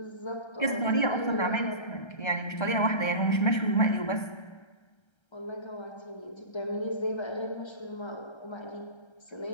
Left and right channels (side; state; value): right; late; 1.3 ms